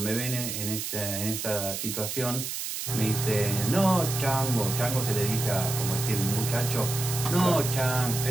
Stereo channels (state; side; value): noise; right; hiss, 4 dB below the sound